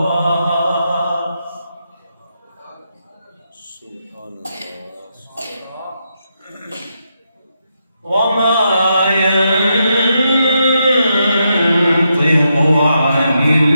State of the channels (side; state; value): both; inverted; correlation -0.82